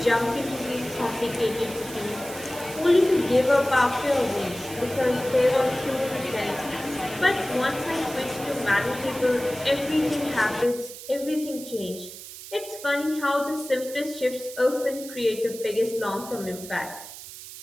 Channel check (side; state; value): right; noise; hiss, 13 dB below the sound